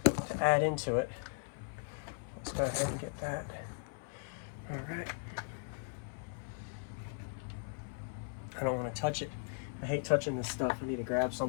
to add into it. Let's go ahead and get that. All right. I don't want to touch it. I hate touching this stuff. I need to grab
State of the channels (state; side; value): silent; right; 53 dB below the other